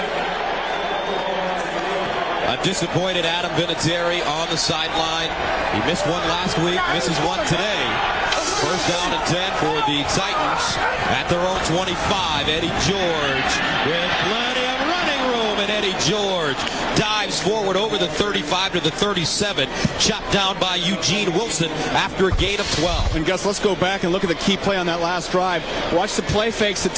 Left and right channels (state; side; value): identical; both; correlation 1.00